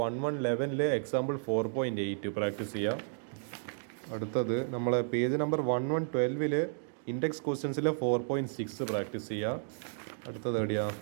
1111-ലെ എക്സാമ്പിൾ 4.8 പ്രാക്ടീസ് ചെയ്യുക. അടുത്തത് നമ്മളെ പേജ് നമ്പർ 1112-ൽ ഇൻഡെക്സ് ക്വസ്റ്റ്യൻസിലെ 4.6 പ്രാക്ടീസ് ചെയ്യുക. അടുത്തത് എവിടെയാ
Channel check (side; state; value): left; silent; digital silence